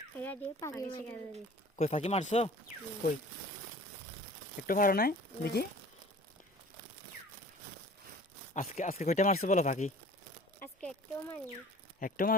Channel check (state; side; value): normal; both; correlation 0.46